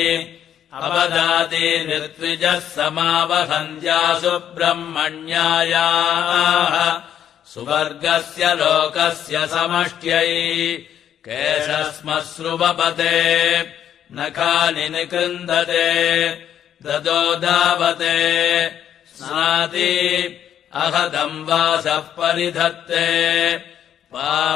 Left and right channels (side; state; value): right; quieter; 9.8 dB